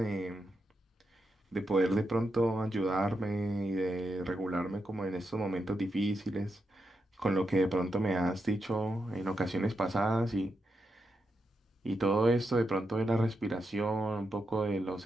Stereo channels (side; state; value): both; normal; correlation 0.85